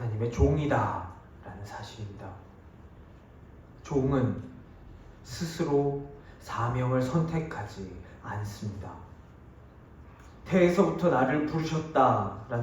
종이다 라는 사실입니다. 종은 스스로 사명을 선택하지 않습니다. 태에서부터 나를 부르셨다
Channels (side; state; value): both; identical; correlation 1.00